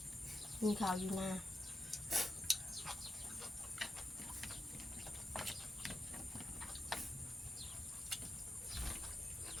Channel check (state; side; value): normal; both; correlation 0.89